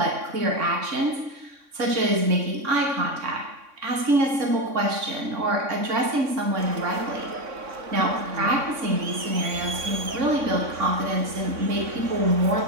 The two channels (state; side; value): late; left; 3.6 ms